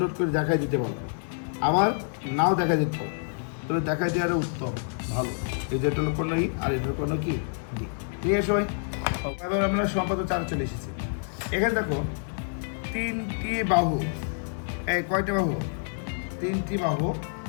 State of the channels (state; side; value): silent; right; 60 dB below the other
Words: করে দেখাই দিতে পারো, আবার নাও দেখা দিতে পারো, তবে দেখাই দেওয়ার উত্তম ভালো। এই যে এটা হলো কর্ণ ই আর এটার কর্ণ কি ডি। ঠিক আছে সবাই, এবার আমরা সম্পাদক 4 চলে এসেছি। এখানে দেখো 3টি বাহু, এই কয়টা বাহু? 3টি বাহু